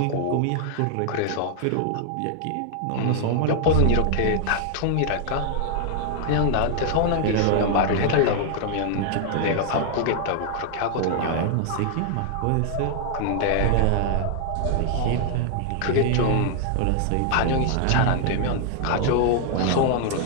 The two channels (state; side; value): different; both; correlation 0.00